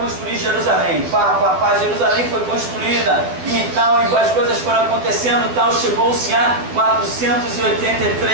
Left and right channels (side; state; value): left; late; 12 ms